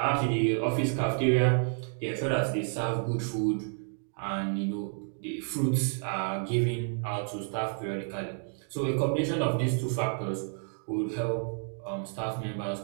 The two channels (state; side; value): silent; left; 58 dB below the other